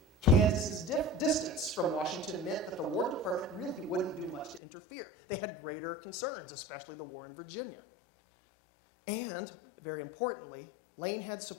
Kansas's distance from Washington meant that the War Department really wouldn't do much to interfere. They had greater concerns, especially the war in Virginia. And, very importantly, Lane had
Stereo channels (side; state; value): right; drops out; at 4.6 s